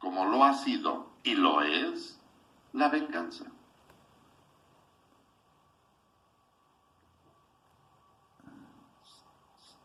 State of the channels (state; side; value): identical; both; correlation 1.00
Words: lo ha sido y lo es la venganza.